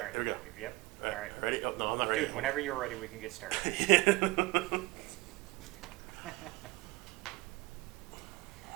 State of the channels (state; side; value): quieter; left; 22.3 dB